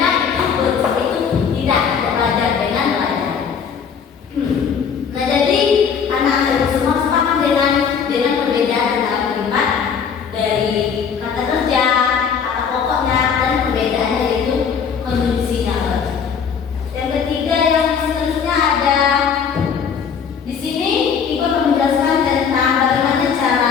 itu tidak belajar dengan belajar. Nah, jadi anak-anak itu semua sepakat dengan perbedaan dalam kalimat dari kata kerja, kata pokoknya, dan perbedaannya itu konjungsinya. Yang ketiga yang seterusnya ada di sini Ibu akan menjelaskan tentang bagaimana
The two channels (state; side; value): quieter; right; 6.8 dB